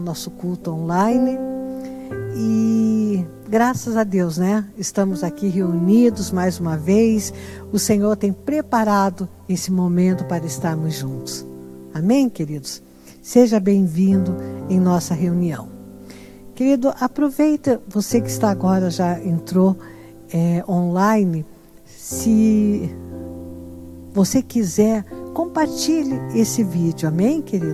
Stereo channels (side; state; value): both; identical; correlation 1.00